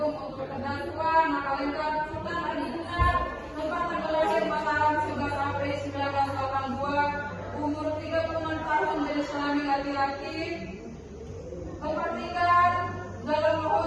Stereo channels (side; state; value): both; identical; correlation 1.00